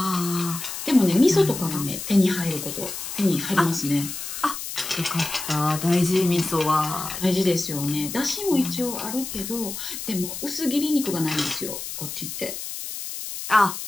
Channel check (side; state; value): left; noise; hiss, 7 dB below the sound